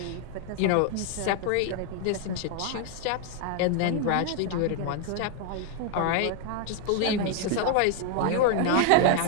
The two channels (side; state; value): both; different; correlation 0.00